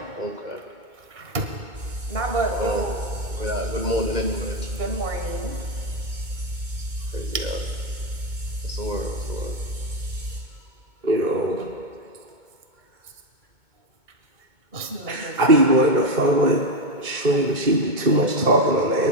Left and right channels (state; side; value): late; left; 2.2 ms